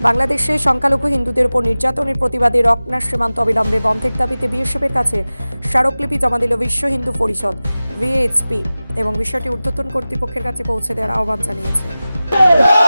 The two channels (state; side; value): inverted; both; correlation -0.97